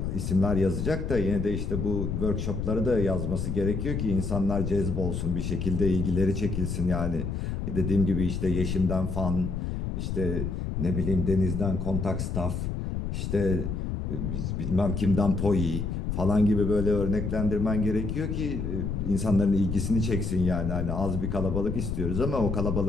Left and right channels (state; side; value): noise; left; rumble, 3 dB below the sound